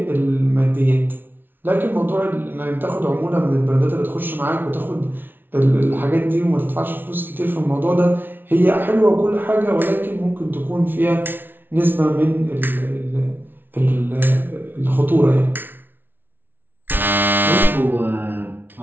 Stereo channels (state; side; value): late; left; 0.098 ms